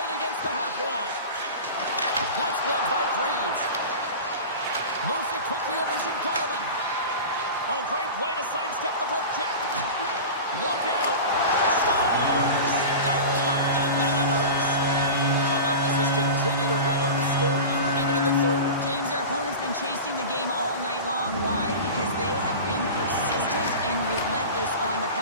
against the half wall. That's gloved by Greaves. Moves it quickly over to Garland. Oh, great play to sidestep the poke check. Look out. Scores! The captain delivers. Columbus has continued to run up the score here even in the third. James, their opponent's been chasing the game all night long. Why? Because they have been persistent and relentless on the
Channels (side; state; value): both; inverted; correlation -0.30